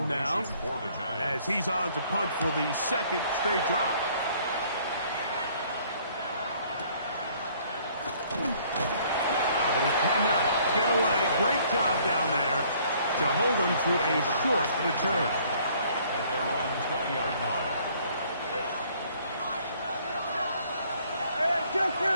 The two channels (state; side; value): inverted; both; correlation -0.60